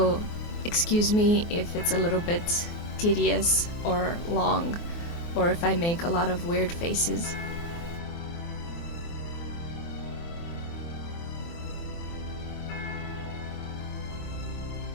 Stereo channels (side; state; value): right; late; 24 ms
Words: excuse me if it's a little bit tedious or long, or if I make a lot of weird faces.